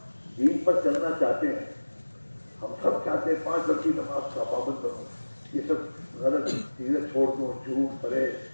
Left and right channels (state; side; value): inverted; both; correlation -1.00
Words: دین پر چلنا چاہتے ہیں. ہم سب چاہتے ہیں 5 وقت کی نماز کا پابند بنوں, یہ سب غلط چیزیں چھوڑ دوں, جھوٹ پڑے